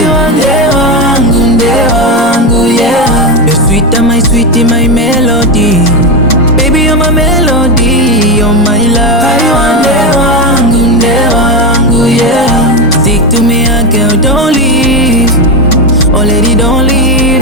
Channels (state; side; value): normal; both; correlation 0.13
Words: Ndewangu, Ndewangu, yeah. You're sweeter, my sweetie, my melody. Baby you're my melody, you're my love. Ndewangu, Ndewangu, yeah. Stick to me, girl, don't leave. Oh lady, don't